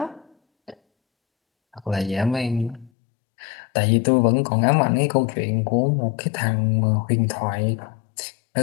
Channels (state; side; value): drops out; right; at 2.9 s